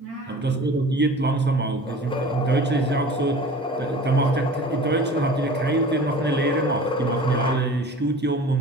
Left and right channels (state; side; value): normal; both; correlation 0.41